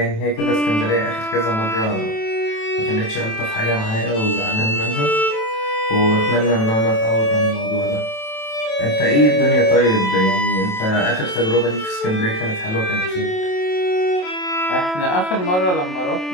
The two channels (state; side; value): late; right; 27 ms